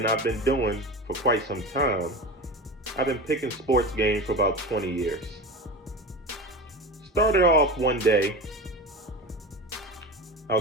I've been doing for quite some time, I've been picking sports games for about 20 years. Started off one day, I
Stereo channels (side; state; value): both; normal; correlation 0.28